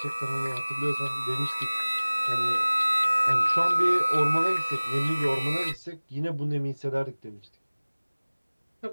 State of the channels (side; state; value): both; inverted; correlation -1.00